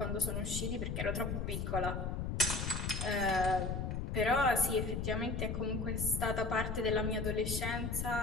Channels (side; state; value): left; noise; rumble, 2 dB below the sound